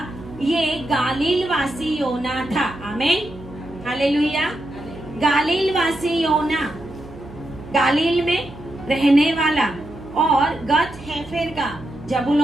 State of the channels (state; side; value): noise; right; hum, 17 dB below the sound